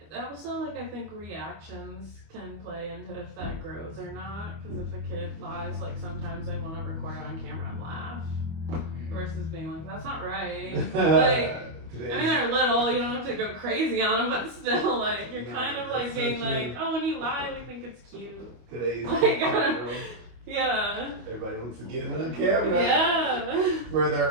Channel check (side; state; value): left; late; 25 ms